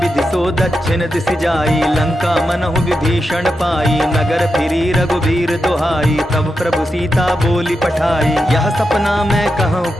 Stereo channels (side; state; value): both; normal; correlation 0.88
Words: सो दक्षिण दिशि जाई लंका मनहु विभीषण पाई। नगर फिरी रघुबीर दुहाई तब प्रभु सीता बोली पठाई। यह सपना मैं कहूँ